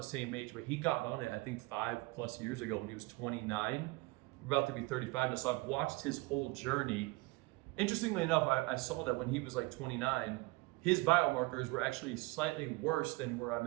same age, but he got on it, I think 5+ years ago when he was 29. We're about to be 35 now, so I've watched his whole journey. Interestingly enough, I saw that when he was like 29, his biomarkers were actually slightly worse than where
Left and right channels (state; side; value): quieter; left; 23.2 dB